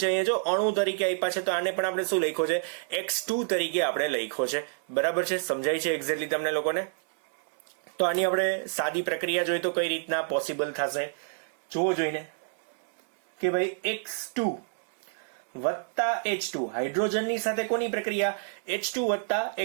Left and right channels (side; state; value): left; silent; 59 dB below the other